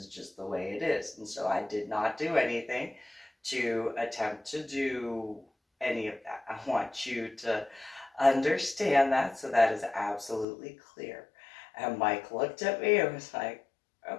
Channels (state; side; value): drops out; right; at 10.5 s